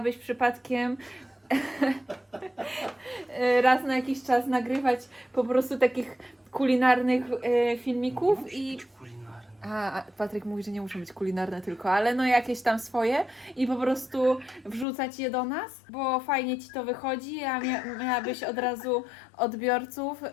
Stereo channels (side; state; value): right; drops out; at 14.9 s